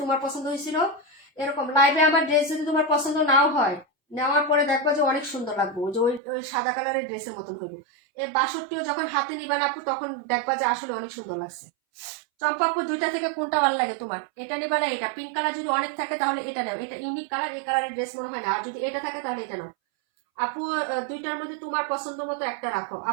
তোমার পছন্দ হয়েছিল। এরকম লাইভে আমার ড্রেস যদি তোমার পছন্দ নাও হয়, নেওয়ার পরে দেখবা যে অনেক সুন্দর লাগবে, যে ওই ওই সাদা কালারের ড্রেসের মতন হইব। এই 62 যখন হাতে নিবেন আপু, তখন দেখবা যে আসলে অনেক সুন্দর লাগছে। চম্পা আপু, দুইটা থেকে কোনটা ভালো লাগে তোমার? এটা নিবা না এটা? পিঙ্ক কালার যদি অনেক থাকে তাহলে এটা নাও, এটা ইউনিক কালার, এই কালারের ড্রেস মনে হয় না। আর যদি এটা থাকে তাহলে এটা নাও আপু। দুইটার মধ্যে তোমার পছন্দ মতো একটা রাখো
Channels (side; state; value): left; drops out; at 6.2 s